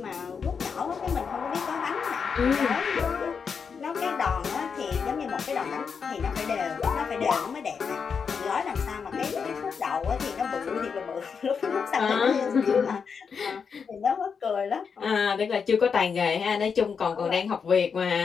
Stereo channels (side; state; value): right; quieter; 6.0 dB